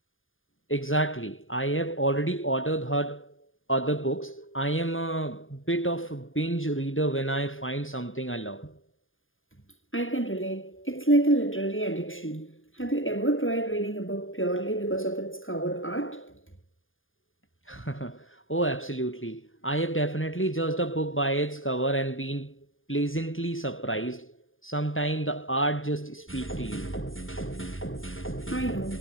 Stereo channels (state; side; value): late; right; 0.59 ms